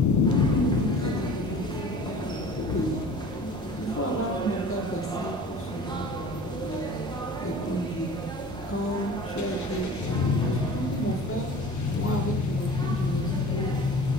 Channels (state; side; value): normal; both; correlation 0.42